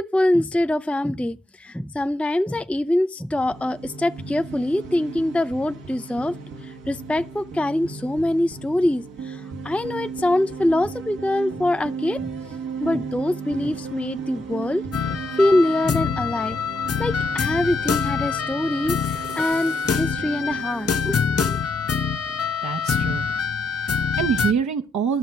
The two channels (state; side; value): normal; both; correlation 0.83